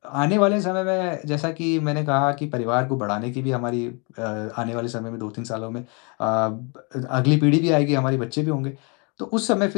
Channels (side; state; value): right; quieter; 33.1 dB